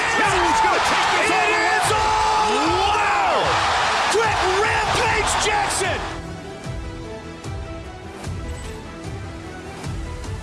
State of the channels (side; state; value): both; identical; correlation 1.00